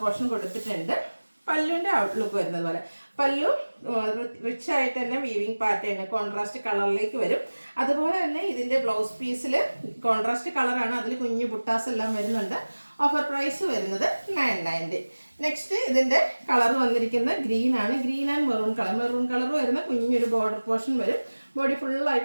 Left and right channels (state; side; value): inverted; both; correlation -1.00